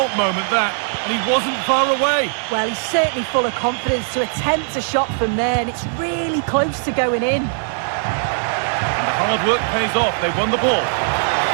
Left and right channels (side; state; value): left; silent; 63 dB below the other